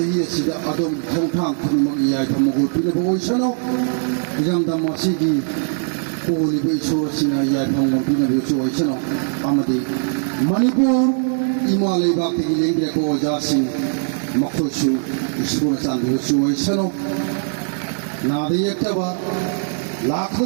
Sida Adom Tongtang Punamaki Tamago Pinabo Sano Yang Damasigi Holy Bay Sina Yapam Pinabo Sano Amadi Manipur Imale Bhakti Lingria Ko Jasi Makosu Isuna Sandu Sano Nadi Yaktaba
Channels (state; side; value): silent; left; 65 dB below the other